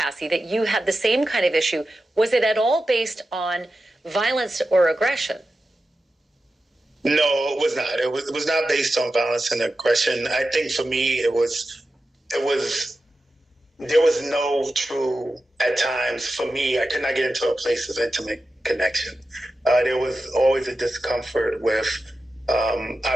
that you had the same kind of issue. Was it at all based on violence or aggression? No, it was not. It was not based on violence and aggression. I think for me, there was no true, at times, for me, I could not get into a place of intimate connection. There was always a discomfort with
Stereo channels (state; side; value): normal; both; correlation 0.92